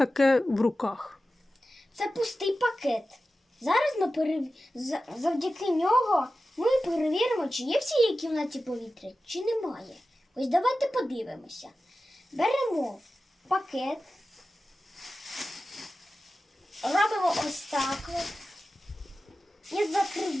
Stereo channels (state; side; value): normal; both; correlation 0.94